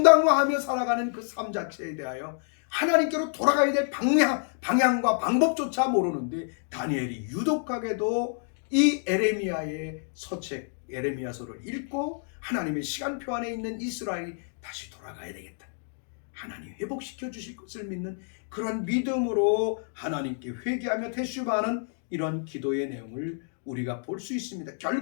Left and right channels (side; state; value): right; silent; 59 dB below the other